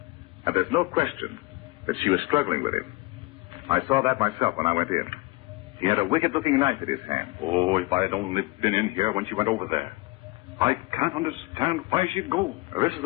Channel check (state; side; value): quieter; right; 21.9 dB